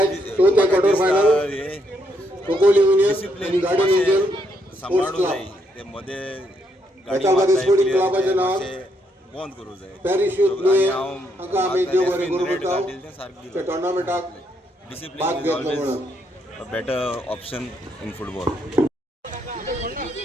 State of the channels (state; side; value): normal; both; correlation 0.75